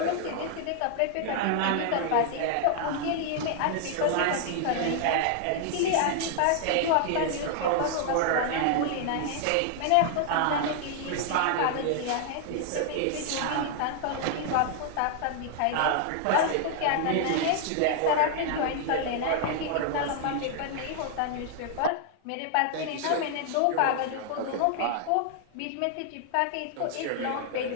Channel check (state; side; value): different; both; correlation 0.00